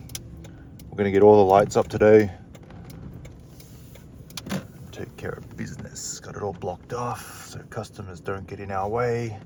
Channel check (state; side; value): identical; both; correlation 1.00